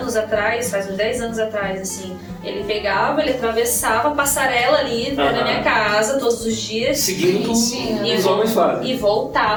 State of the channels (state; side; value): identical; both; correlation 1.00